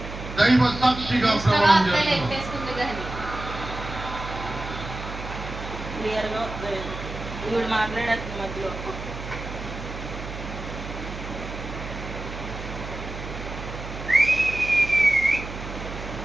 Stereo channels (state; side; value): noise; right; hum, 9 dB below the sound